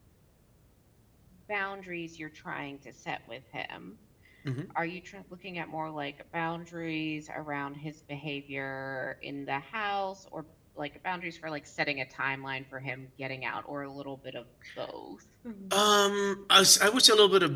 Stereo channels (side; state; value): both; identical; correlation 1.00